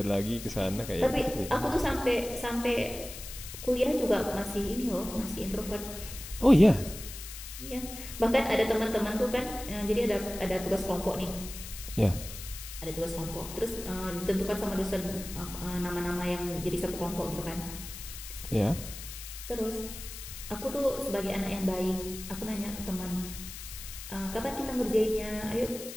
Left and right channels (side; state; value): left; noise; hiss, 11 dB below the sound